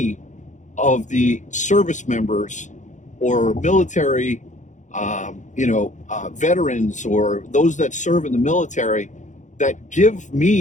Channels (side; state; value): right; late; 0.36 ms